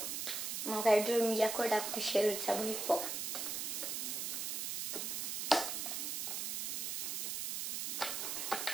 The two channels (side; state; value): right; noise; hiss, 2 dB below the sound